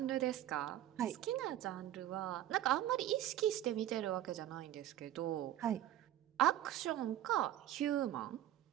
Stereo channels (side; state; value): left; quieter; 12.7 dB